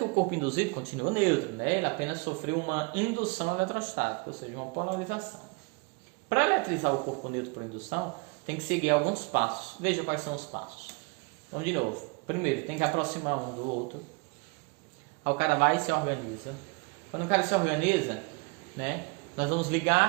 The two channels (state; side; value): quieter; left; 29.8 dB